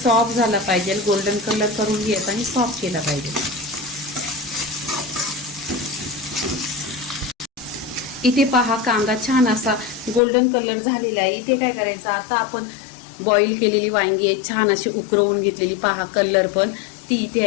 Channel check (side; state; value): right; drops out; at 10.2 s